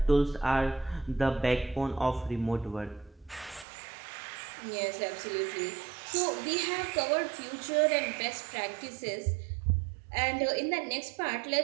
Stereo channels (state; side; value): drops out; left; at 3.7 s